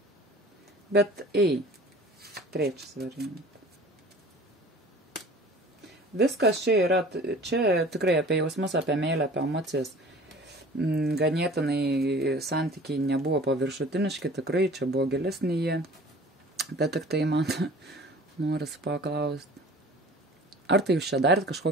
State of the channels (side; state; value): both; normal; correlation 0.45